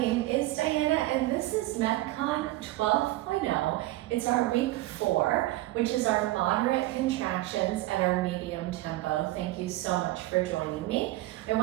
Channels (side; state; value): left; quieter; 17.5 dB